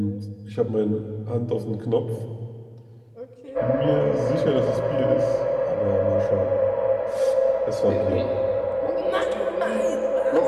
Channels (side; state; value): both; identical; correlation 1.00